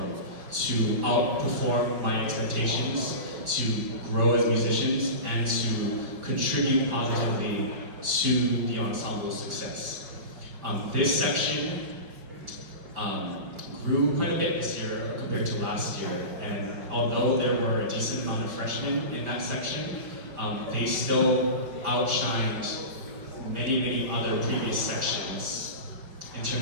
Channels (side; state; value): left; late; 5.1 ms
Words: to outperform my expectations, to grow as musicians, and to contribute positively to the ensemble's success. This section grew quite a bit this year compared to last year, and although there were a decent amount of freshmen in that section, they still outshined many other previous sections in